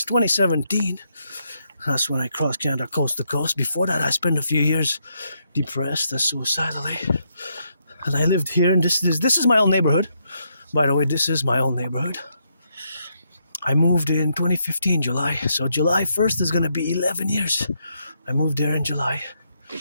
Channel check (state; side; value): inverted; both; correlation -0.78